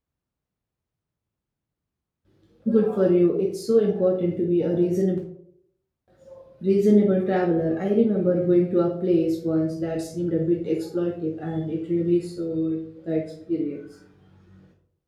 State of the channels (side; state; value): both; identical; correlation 1.00